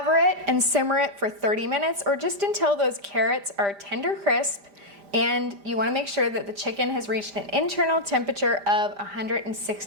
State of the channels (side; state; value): left; late; 5.0 ms